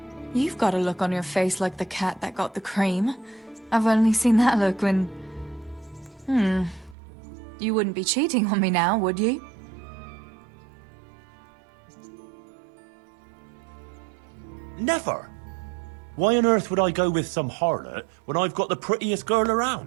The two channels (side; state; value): left; drops out; at 7.0 s